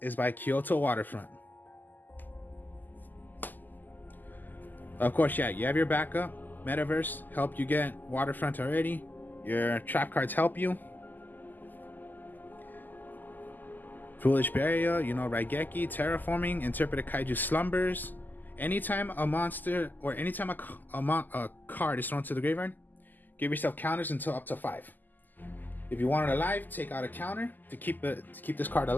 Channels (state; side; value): late; right; 0.086 ms